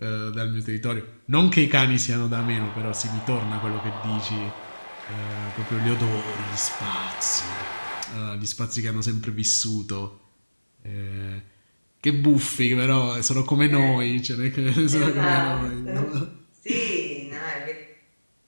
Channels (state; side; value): inverted; both; correlation -1.00